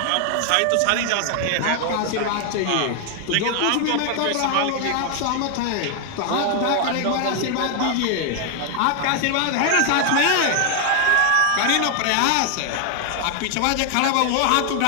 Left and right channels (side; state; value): both; different; correlation 0.00